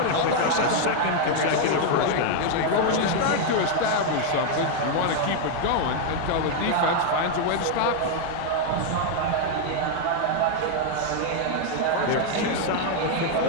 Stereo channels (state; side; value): different; both; correlation 0.00